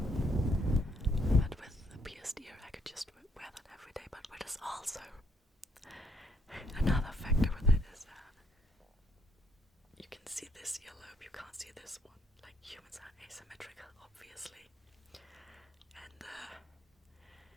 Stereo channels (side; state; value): both; normal; correlation 0.69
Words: But with the pierced ear, I could just wear that every day. But what is also another factor with it is you can see this earlobe, you can't see this one. Like, humans are asymmetrical, obviously. And